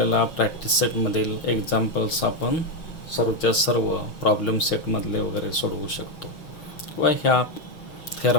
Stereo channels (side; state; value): right; late; 6.3 ms